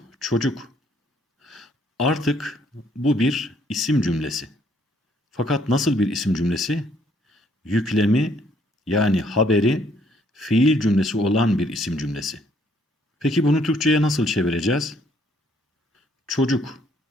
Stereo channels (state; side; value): normal; both; correlation 0.66